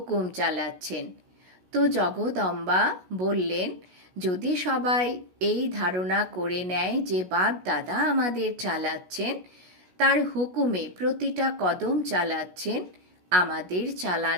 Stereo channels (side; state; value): left; late; 16 ms